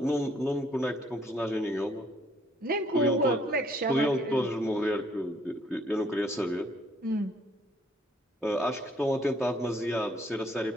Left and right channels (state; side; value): normal; both; correlation 0.64